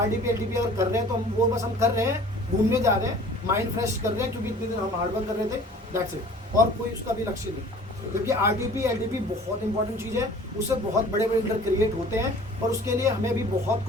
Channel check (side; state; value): both; normal; correlation 0.47